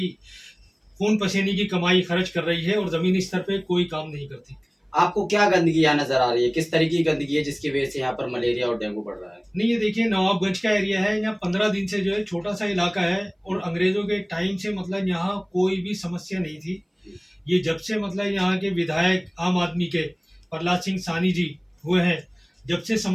खून पसीने की कमाई खर्च कर रही है और ज़मीनी स्तर पे कोई काम नहीं करती। आपको क्या गंदगी यहाँ नजर आ रही है? किस तरीके की गंदगी है जिसकी वजह से यहाँ पर मलेरिया और डेंगू बढ़ रहा है? नहीं, ये देखिए, नवाबगंज का एरिया है, यहाँ 15 दिन से जो है छोटा सा इलाका है, और अंग्रेजों के टाइम से मतलब यहाँ कोई भी समस्या नहीं थी। ये जब से मतलब यहाँ के विधायक आम आदमी के प्रहलाद सिंह सानी जी हुए हैं, जब से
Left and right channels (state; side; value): identical; both; correlation 1.00